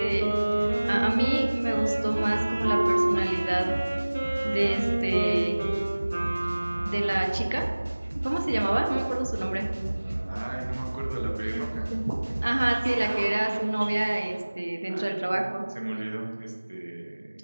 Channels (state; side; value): inverted; both; correlation -1.00